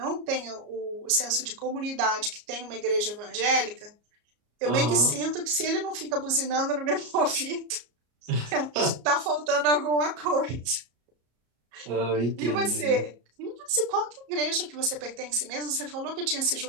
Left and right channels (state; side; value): late; left; 34 ms